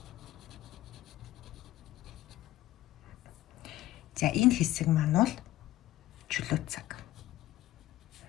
За энэ хэсэг маань бол чөлөө цаг.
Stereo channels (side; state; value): right; quieter; 15.2 dB